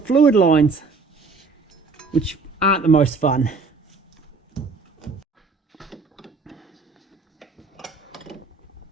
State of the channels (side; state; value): left; quieter; 4.1 dB